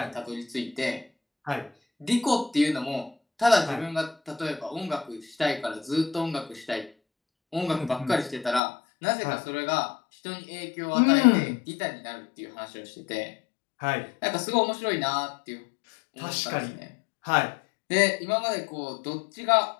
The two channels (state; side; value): drops out; right; at 8.6 s